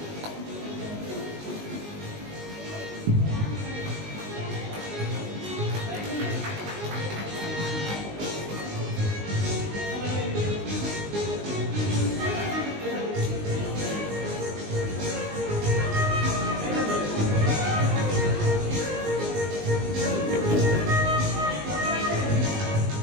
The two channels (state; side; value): late; left; 19 ms